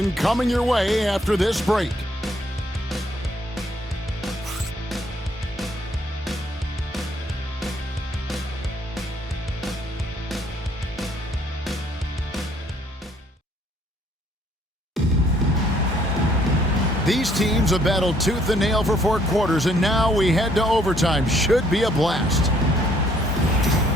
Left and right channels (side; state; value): both; normal; correlation 0.65